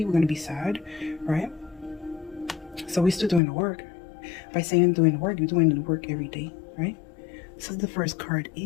we're going to be sad, right? So we're still doing the work. By saying doing the work, you're doing the work every day, right? So the first card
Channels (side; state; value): right; drops out; at 3.4 s